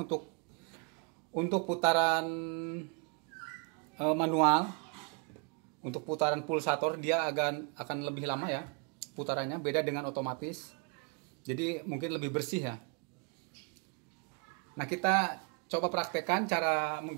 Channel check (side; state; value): left; quieter; 34.6 dB